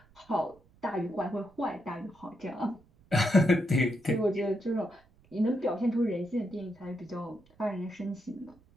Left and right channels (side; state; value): right; noise; rumble, 29 dB below the sound